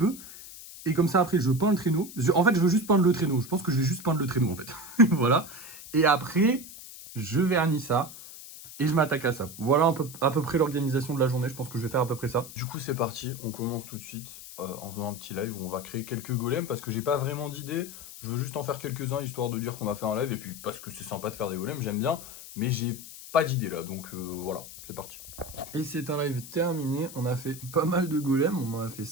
Et comme ça après je peins le traîneau. En fait je veux juste peindre le traîneau. Je pense que je vais juste peindre le traîneau en fait. Voilà. Et après, je vernis ça et je m'attaque à ça. Voilà à peu près l'organisation de la journée. Je pense que je vais faire à peu près ça. Du coup c'est parti, on commence tout de suite en faisant un petit live où on va créer quelques golems parce que j'ai pas vraiment d'idée. Je veux juste en faire quelques-uns histoire de dire qu'on a fait un live et puis parce que c'est sympa de faire des golems, j'aime bien. Mais j'ai pas d'idée là, donc voilà, c'est parti. Et c'est un live terminé, on a fait pas mal de golems, on en a fait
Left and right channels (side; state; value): left; noise; hiss, 14 dB below the sound